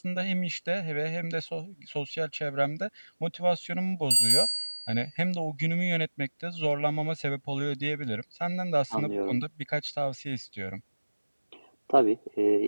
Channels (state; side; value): inverted; both; correlation -1.00